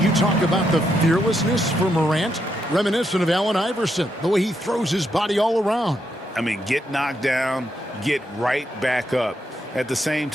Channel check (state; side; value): normal; both; correlation 0.80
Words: you talk about the fearlessness for Morant, reminiscent of Allen Iverson, the way he throws his body all around. I mean, get knocked down, get right back up. At the same